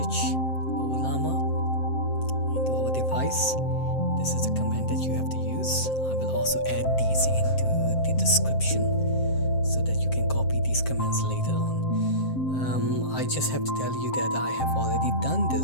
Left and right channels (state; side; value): late; right; 7.6 ms